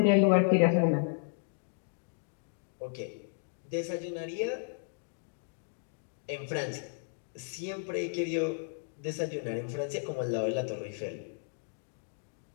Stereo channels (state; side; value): silent; right; digital silence